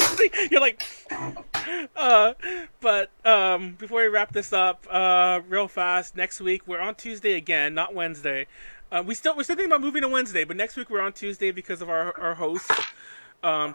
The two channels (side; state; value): both; inverted; correlation -1.00